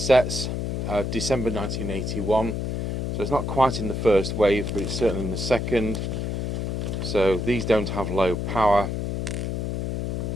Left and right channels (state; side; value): noise; left; hum, 2 dB below the sound